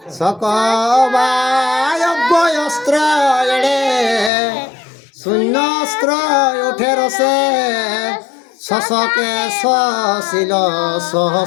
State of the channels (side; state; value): right; drops out; at 4.3 s